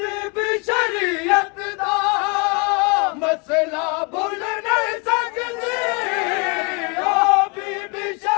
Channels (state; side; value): quieter; right; 32.6 dB